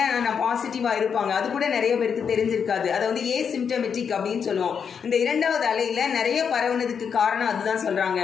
நான் பாசிட்டிவாக இருப்பாங்க, அது கூட நிறைய பேருக்கு தெரிஞ்சிருக்காது. அதை வந்து ஏசிம்டமெட்டிக் அப்படின்னு சொல்லுவோம். இந்த 2வது அலையில் நிறைய பரவுனதுக்கு காரணம் அதுதான் சொல்கிறாங்க.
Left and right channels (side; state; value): right; quieter; 6.8 dB